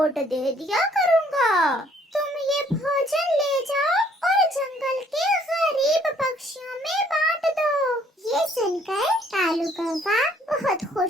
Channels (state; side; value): normal; both; correlation 0.62